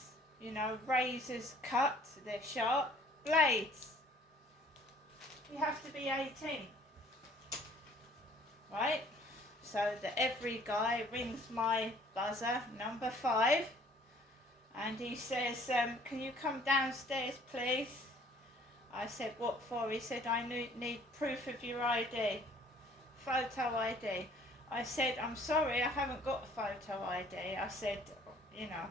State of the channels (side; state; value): both; normal; correlation 0.56